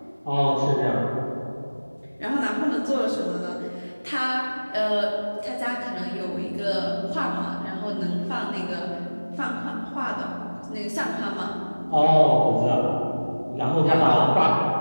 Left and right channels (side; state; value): both; inverted; correlation -1.00